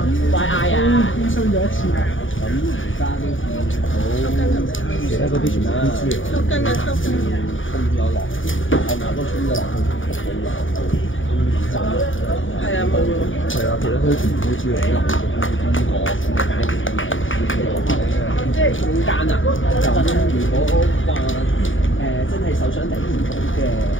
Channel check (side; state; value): right; late; 0.57 ms